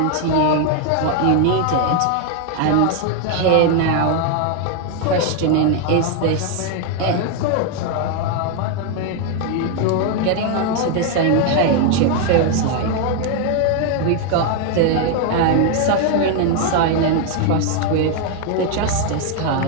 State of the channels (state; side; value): different; both; correlation 0.01